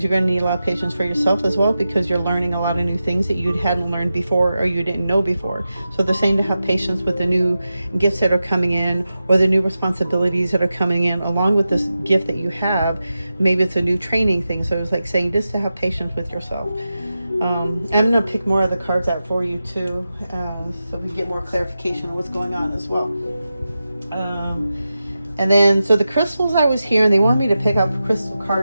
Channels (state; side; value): inverted; both; correlation -0.92